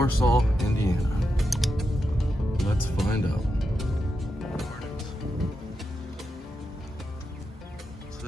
Indiana. Let's find out. So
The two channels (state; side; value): normal; both; correlation 0.87